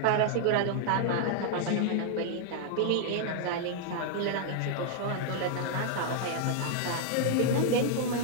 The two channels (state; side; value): different; both; correlation 0.00